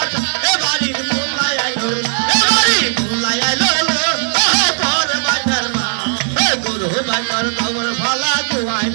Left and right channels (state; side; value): silent; left; 56 dB below the other